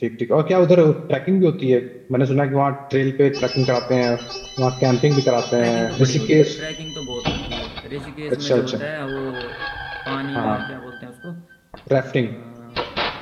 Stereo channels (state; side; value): identical; both; correlation 1.00